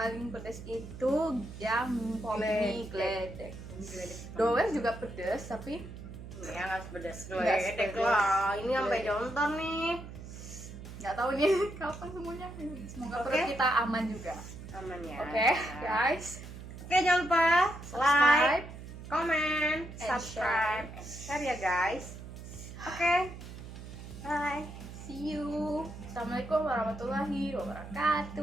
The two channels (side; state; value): right; noise; hum, 12 dB below the sound